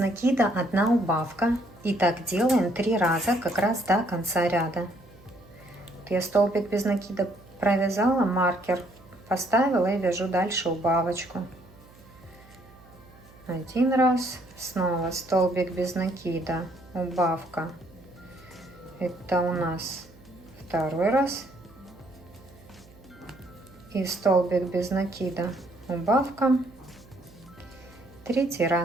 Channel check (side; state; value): right; noise; hum, 24 dB below the sound